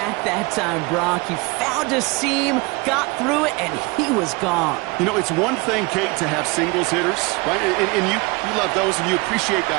that time, Brock. He found a seam, got through it, and he was gone. You know, it's one thing, Kate, to have singles hitters, right? And you love those, and you appreciate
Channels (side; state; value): left; quieter; 26.1 dB